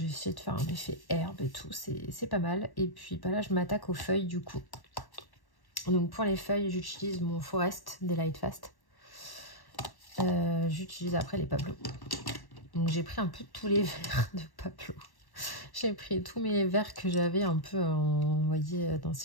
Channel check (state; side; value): late; right; 1.1 ms